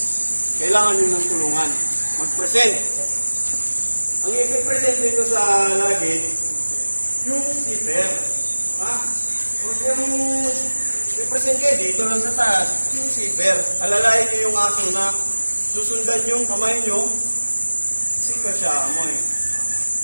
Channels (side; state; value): both; inverted; correlation -1.00